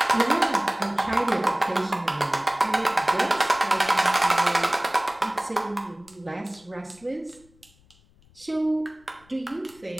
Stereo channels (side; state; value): left; noise; rumble, 30 dB below the sound